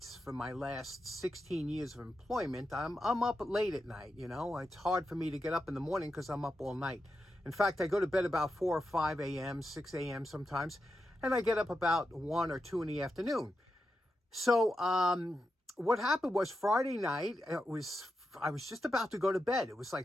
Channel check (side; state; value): both; normal; correlation 0.88